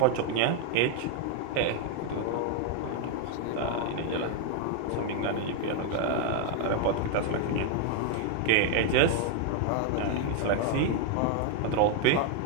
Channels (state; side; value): different; both; correlation 0.00